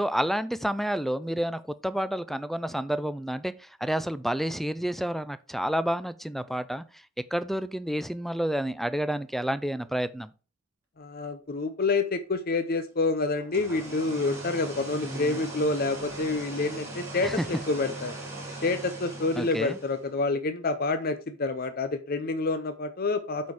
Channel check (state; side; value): normal; both; correlation 0.42